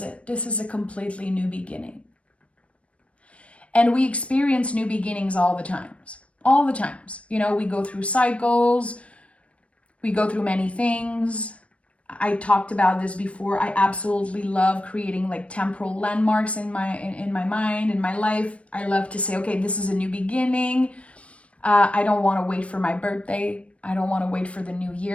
This is a completely new beginning. And we experience new beginnings all the times. All the times. You know, we go through cycles. We go through many things. I talked about this before. I absolutely love creating like temporal landmarks in my mind, in my life. I love to say, okay, this is a new beginning. I don't want to wait for my birthday. I don't want to wait for the new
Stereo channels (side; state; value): right; late; 0.062 ms